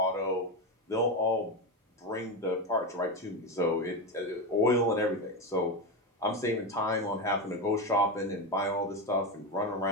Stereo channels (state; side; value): normal; both; correlation 0.15